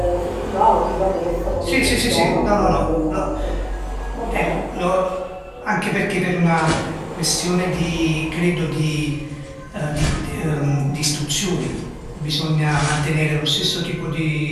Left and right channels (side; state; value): both; identical; correlation 1.00